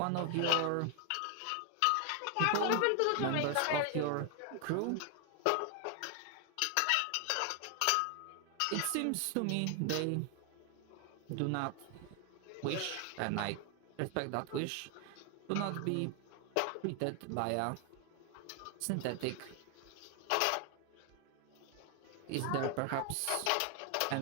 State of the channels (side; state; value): both; different; correlation 0.00